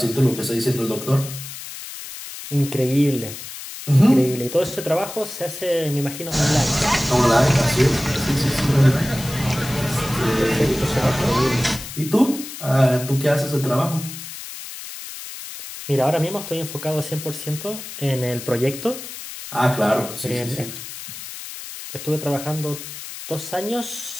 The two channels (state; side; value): noise; left; hiss, 11 dB below the sound